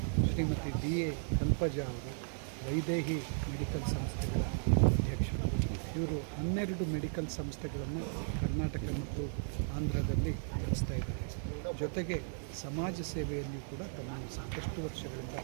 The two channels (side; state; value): left; silent; digital silence